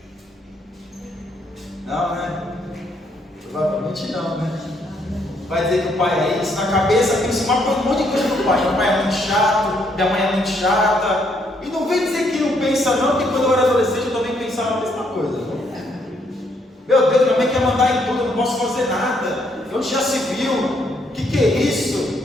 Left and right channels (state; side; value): normal; both; correlation 0.72